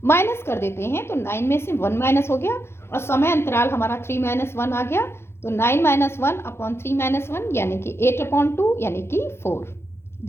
माइनस कर देते हैं। तो 9 में से 1 माइनस हो गया और समय अंतराल हमारा 3 - 1 आ गया। तो 9 - 1 अपॉन 3 - 1 यानी कि 8/2 यानी कि 4।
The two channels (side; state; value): right; late; 0.12 ms